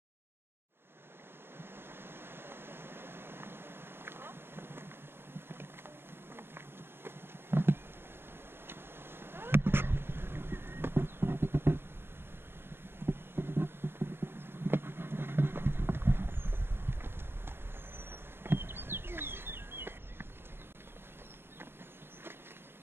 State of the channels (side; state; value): left; late; 0.11 ms